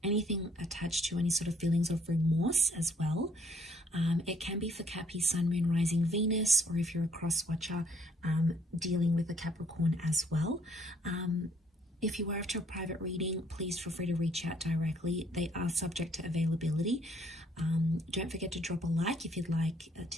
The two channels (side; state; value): both; normal; correlation 0.64